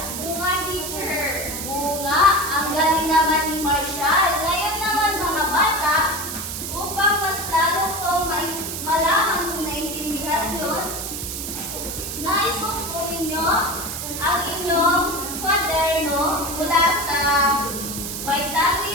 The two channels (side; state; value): right; noise; hiss, 6 dB below the sound